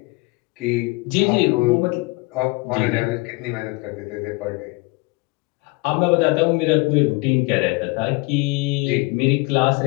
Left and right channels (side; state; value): right; quieter; 26.3 dB